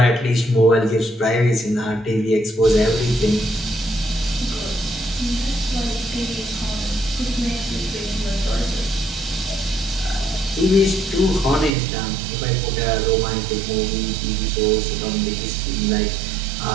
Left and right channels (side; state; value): left; drops out; at 11.7 s